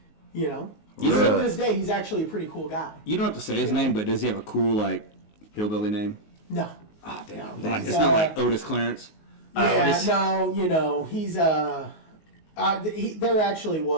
You Still know- to this day, he's actually a pretty cool guy. You don't have to say his name, but does he have a cool, like, hillbilly name? No. Ah, damn. No, Like, he's, it's not like Otis Clarence. Yeah, no, he's there actually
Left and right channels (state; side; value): late; right; 19 ms